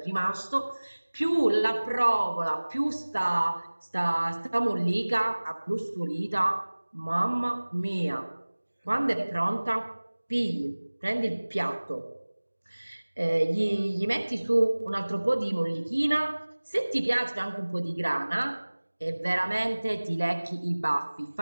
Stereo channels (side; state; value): both; inverted; correlation -1.00